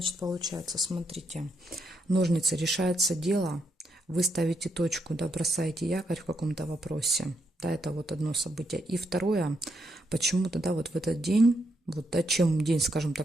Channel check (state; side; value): normal; both; correlation 0.79